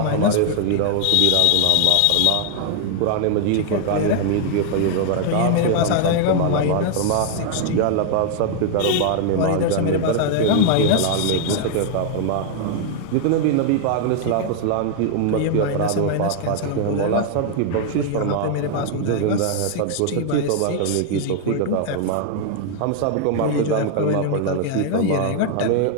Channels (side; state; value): both; different; correlation 0.00